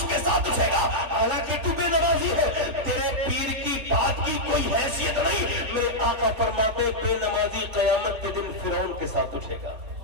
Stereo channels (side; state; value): left; late; 3.4 ms